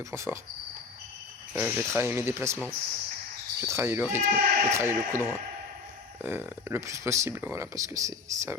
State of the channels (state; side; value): quieter; right; 4.7 dB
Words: points forts. Je vais travailler mes déplacements. Je vais travailler le rythme. Je vais travailler le coup droit. Le plus possible, voilà, parce que c'est un